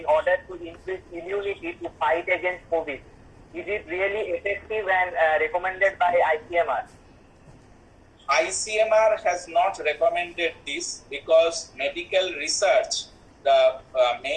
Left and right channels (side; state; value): both; identical; correlation 1.00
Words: order to increase immunity to fight against COVID. Is it really effective and recommended by ICMR? ICMR has not recommended this because medical research, the